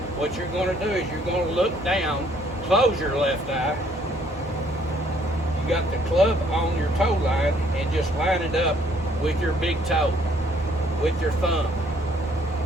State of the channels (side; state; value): both; normal; correlation 0.64